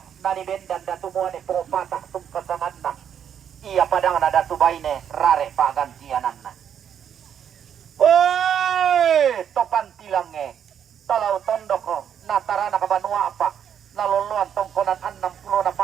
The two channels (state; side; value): quieter; left; 8.7 dB